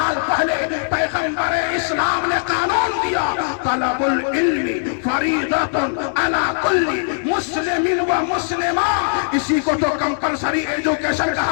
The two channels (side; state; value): right; silent; digital silence